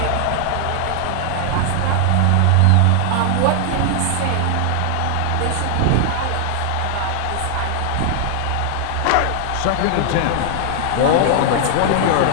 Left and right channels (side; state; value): both; different; correlation 0.00